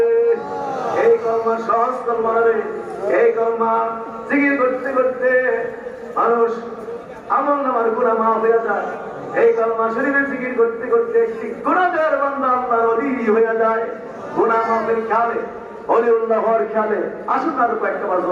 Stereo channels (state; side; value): identical; both; correlation 1.00